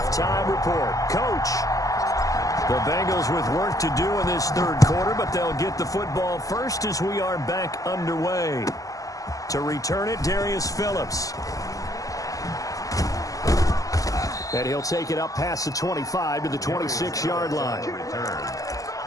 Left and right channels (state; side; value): late; right; 0.17 ms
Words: Report. Coach, the Bengals with work to do in this third quarter, but they'll get the football first as we are back underway. To return it, Darius Phillips. And he'll take it up past the 25 to the 26-yard line.